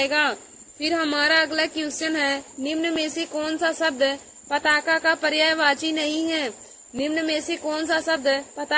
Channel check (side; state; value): both; identical; correlation 1.00